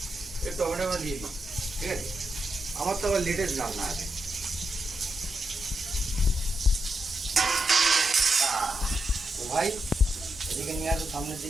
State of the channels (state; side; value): normal; both; correlation 0.85